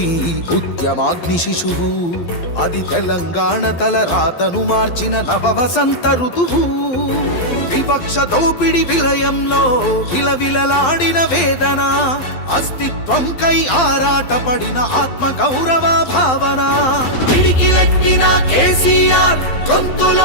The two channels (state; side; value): late; right; 12 ms